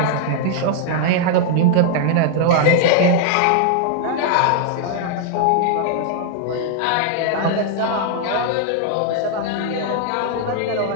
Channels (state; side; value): different; both; correlation -0.01